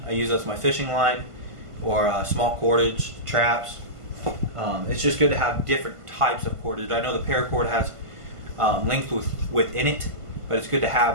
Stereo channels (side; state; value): left; late; 1.5 ms